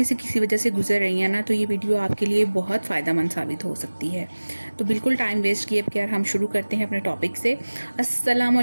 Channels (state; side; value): inverted; both; correlation -1.00